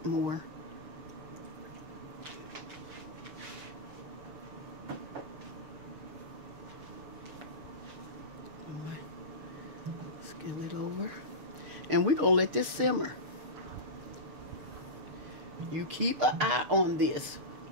more. Skim it over. And we're going to let this simmer. You keep an eye on this.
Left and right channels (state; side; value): late; left; 6.5 ms